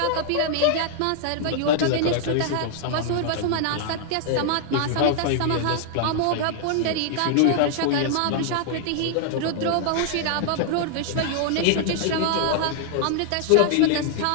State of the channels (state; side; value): different; both; correlation -0.01